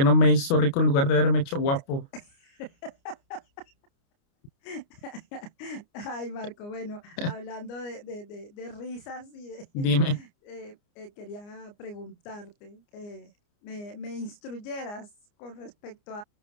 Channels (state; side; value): late; right; 29 ms